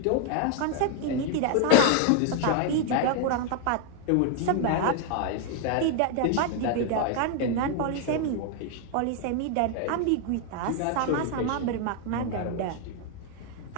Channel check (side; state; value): both; different; correlation 0.00